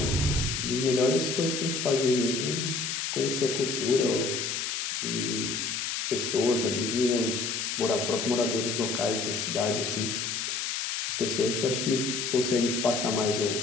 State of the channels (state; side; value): noise; left; hiss, 2 dB below the sound